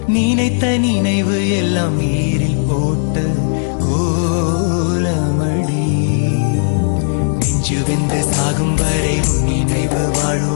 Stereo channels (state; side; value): silent; right; digital silence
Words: நினைத்த நினைவு எல்லாம் நீரில் போட்ட கோலமடி. நெஞ்சு வெந்து சாகும் வரை உன் நினைவு